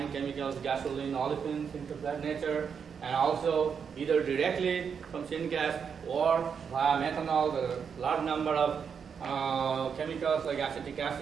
chemicals, gasoline, olefins, things of that nature, and also either directly from syngas or via methanol, the large number of chemicals like acetic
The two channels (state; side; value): quieter; left; 6.7 dB